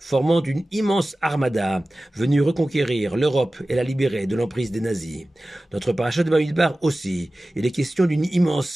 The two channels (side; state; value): both; normal; correlation 0.96